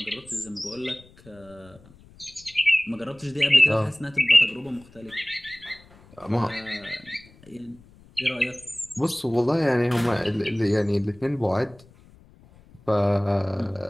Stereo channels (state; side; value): noise; left; rumble, 25 dB below the sound